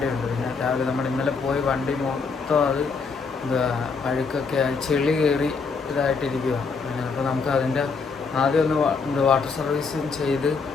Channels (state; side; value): quieter; right; 4.8 dB